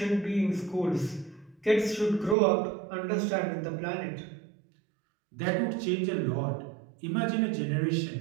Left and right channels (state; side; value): drops out; left; at 2.4 s